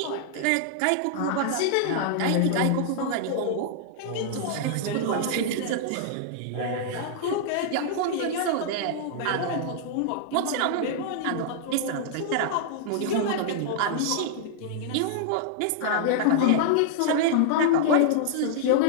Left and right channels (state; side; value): different; both; correlation -0.01